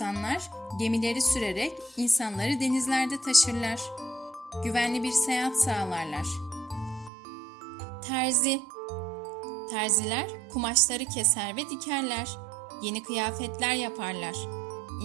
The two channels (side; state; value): left; drops out; at 7.1 s